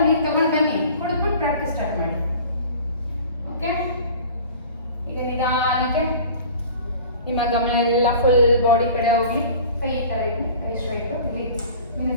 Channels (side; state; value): both; inverted; correlation -0.43